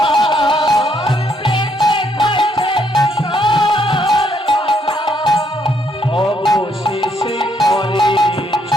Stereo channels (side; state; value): both; normal; correlation 0.72